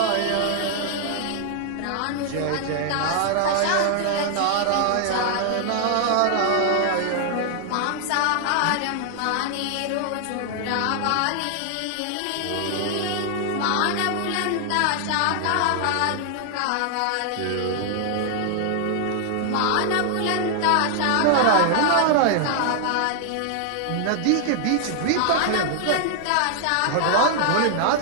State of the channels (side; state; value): both; different; correlation 0.00